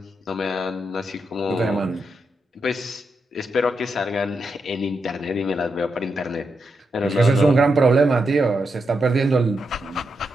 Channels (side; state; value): both; normal; correlation 0.84